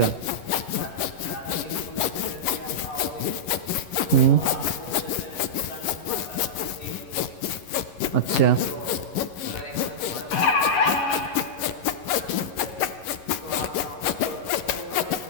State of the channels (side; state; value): right; late; 11 ms